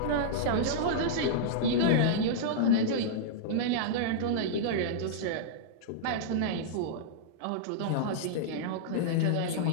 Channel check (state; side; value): different; both; correlation -0.03